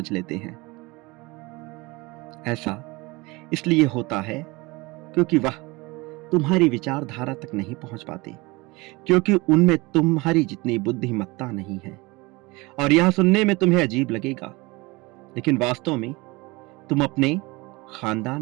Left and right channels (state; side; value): quieter; left; 23.6 dB